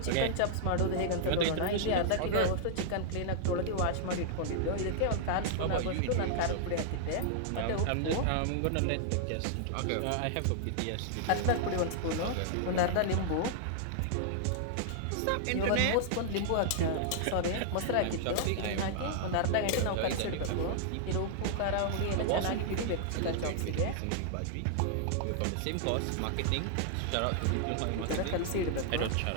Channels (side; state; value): both; different; correlation -0.01